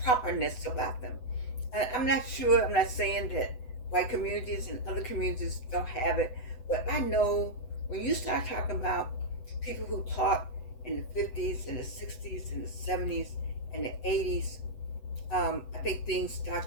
properness about them. And I'm not sure. I'm not saying that white communities and other communities don't have it, but I know when you start talking about people who taught in the 50s and the 60s and the 70s and the 80s, I think things start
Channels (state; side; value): late; right; 8.0 ms